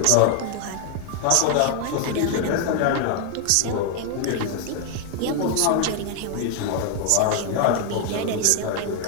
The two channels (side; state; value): both; different; correlation 0.00